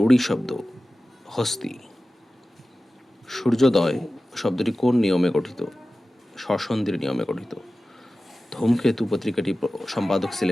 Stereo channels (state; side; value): normal; both; correlation 0.95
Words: শব্দ? হস্তি। সূর্যোদয় শব্দটি কোন নিয়মে গঠিত? স্বরসন্ধির নিয়মে গঠিত। ধূমকেতু পত্রিকাটি সম্পাদক